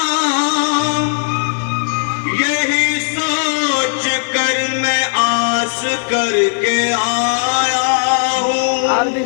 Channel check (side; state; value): right; silent; digital silence